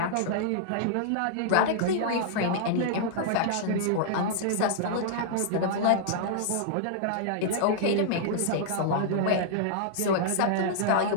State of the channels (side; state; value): both; different; correlation -0.01